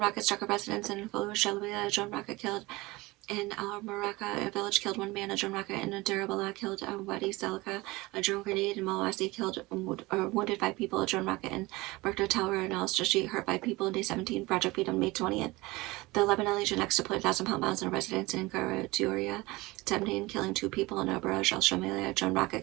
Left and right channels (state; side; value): quieter; left; 21.8 dB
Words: rocket struck a residence in Fallujah, Shalwiya. A drone rocket killed in Al-Maraka, a village killed 1 man. A drone rocket in Dirabala killed Wadi Salka. A drone grenade in Malwasi killed wounded 5 people. A drone rocket in Berkta Tower in Al-Stra Street hurt 5 people. In Day 17, Project Freedom, May 20th. The Lebanon Legion X deployed 1,000-pound bombs in a residence in Garaduria, Tebnin, killing 2 people. In Baraj al-Shamalia, a drone rocket